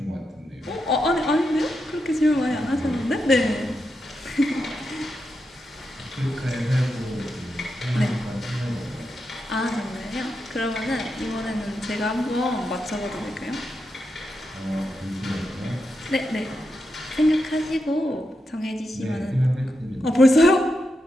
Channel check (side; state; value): both; normal; correlation 0.86